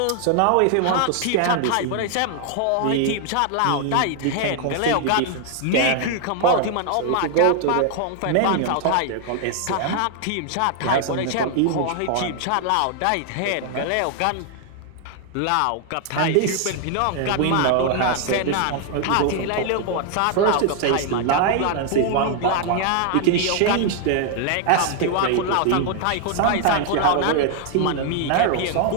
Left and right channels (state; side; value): different; both; correlation 0.00